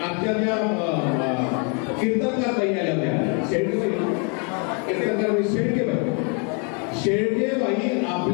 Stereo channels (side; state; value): right; quieter; 36.7 dB